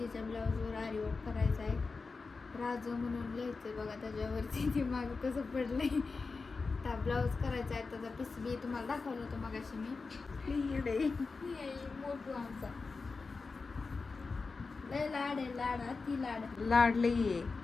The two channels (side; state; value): right; quieter; 4.3 dB